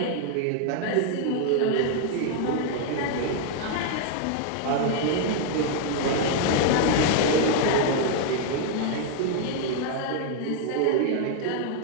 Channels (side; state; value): both; different; correlation 0.00